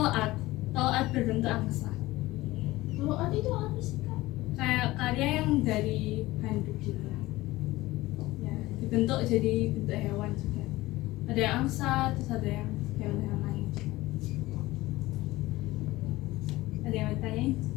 berbentuk angsa. Kalau ada itu apa sih kak? Kayak karya yang dari handuk gitu. Ya, dibentuk jadi bentuk hewan juga. Ada yang angsa, terus ada yang hewan-hewan lain juga. Ada yang mau ditanyain?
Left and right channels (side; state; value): right; quieter; 18.6 dB